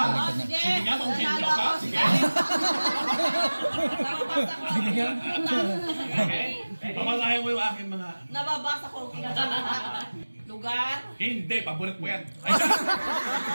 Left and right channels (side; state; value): both; inverted; correlation -1.00